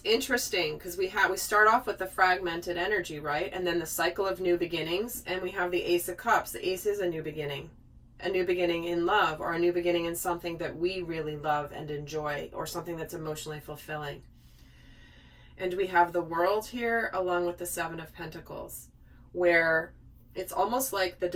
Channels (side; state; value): both; identical; correlation 1.00